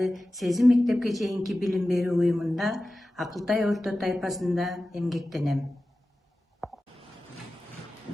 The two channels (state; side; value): normal; both; correlation 0.95